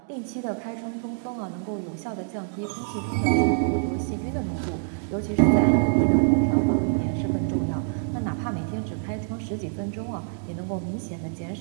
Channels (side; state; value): left; silent; 61 dB below the other